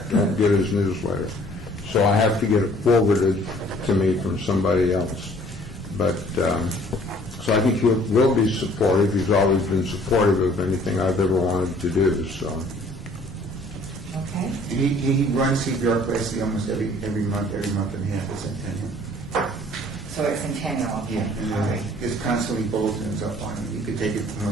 don't get his newsletter. So I have to get it forwarded to me from somebody else. But, so I think he will be supportive. He's always been supportive of anything I've ever wanted to do, so. Okay. He runs CPR classes almost every month and a half at Centennial. So it's Centennial, okay. And All right. there's constantly bulletins up on it. You could take it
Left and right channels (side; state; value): both; normal; correlation 0.56